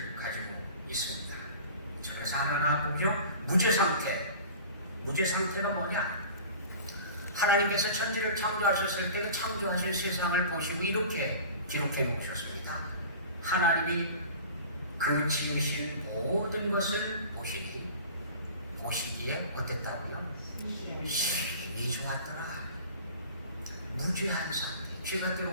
가지고 있습니다. 그래서 하나가 보죠. 무죄 상태. 무죄 상태가 뭐냐? 하나님께서 천지를 창조하셨을 때 창조하신 세상을 보시고 이렇게 기록해 놓으셨습니다. 하나님이 그 지으신 모든 것을 보시기에 어땠다고요? 심히 좋았더라. 무죄한 상태. 죄가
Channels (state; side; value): inverted; both; correlation -0.41